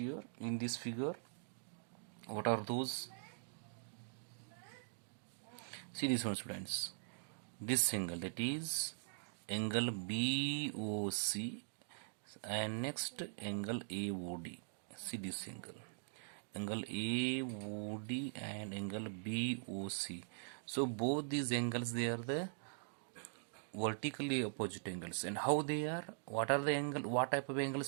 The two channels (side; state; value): left; silent; digital silence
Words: in this figure, what are those? See this one, students. This angle, that is angle BOC, and next angle AOD. See this angle AOD and angle BOC. So both these angles, they are the vertically opposite angles. And how they are? What are the angle? What type of